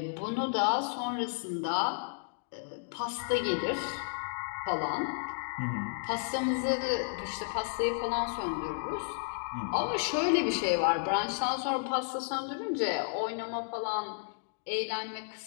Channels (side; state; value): right; silent; digital silence